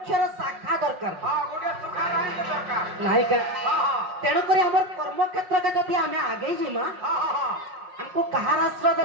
शाखा दरकार नहीं के तेणु करी हमर कर्म क्षेत्र के जदि आमे आगे जिमा हमको कहार आश्रय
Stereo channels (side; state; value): left; late; 5.5 ms